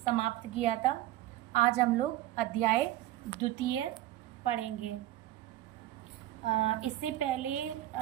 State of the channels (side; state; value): left; quieter; 14.8 dB